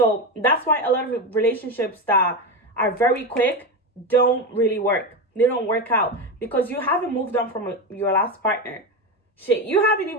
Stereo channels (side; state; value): both; normal; correlation 0.17